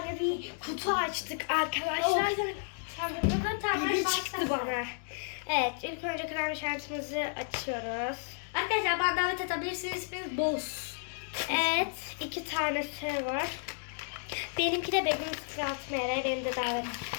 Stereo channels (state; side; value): silent; right; digital silence